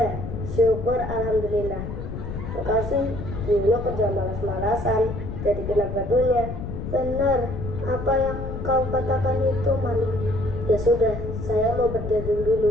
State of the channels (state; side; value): noise; left; rumble, 7 dB below the sound